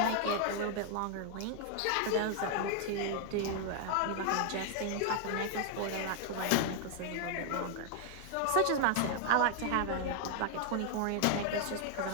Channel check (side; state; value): both; different; correlation 0.00